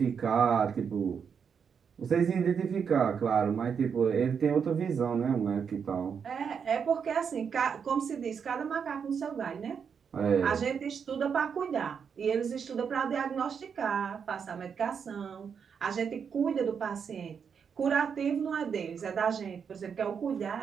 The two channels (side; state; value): left; quieter; 6.8 dB